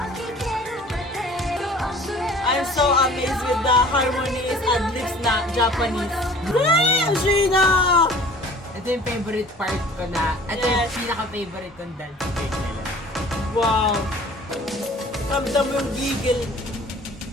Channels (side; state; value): both; normal; correlation 0.48